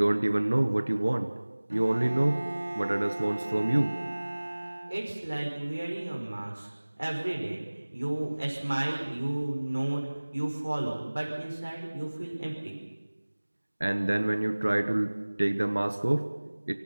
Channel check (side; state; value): both; inverted; correlation -1.00